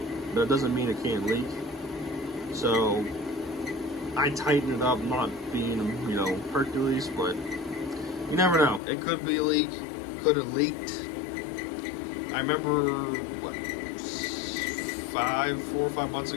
but it doesn't mean it can't leak. So I tightened it up, not being, Hercules, but you never know. It could be a leak, could have leaked. I remember, 4 or 5 months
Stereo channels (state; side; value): drops out; right; at 8.8 s